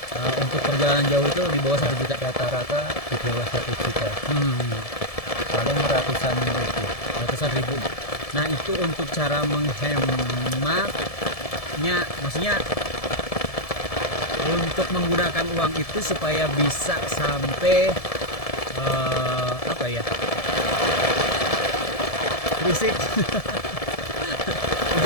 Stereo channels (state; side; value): late; right; 1.7 ms